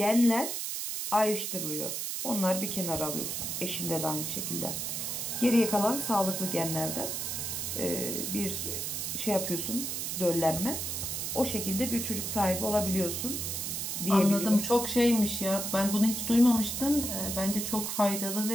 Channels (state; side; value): noise; right; hiss, 3 dB below the sound